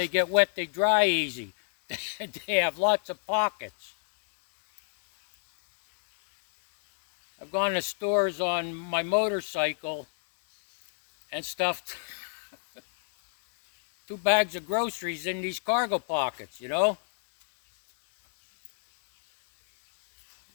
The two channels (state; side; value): silent; right; digital silence